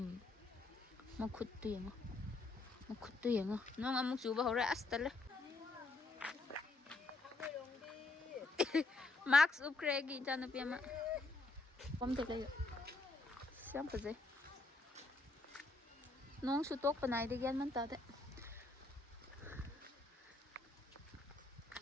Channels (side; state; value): right; quieter; 3.2 dB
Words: Ma khuttu yenga. Nong amuk chuba hore astale. Max upgrade ijanupi ama. Kom te lai. Siam paje. Nong su tok panai de gian man ta de.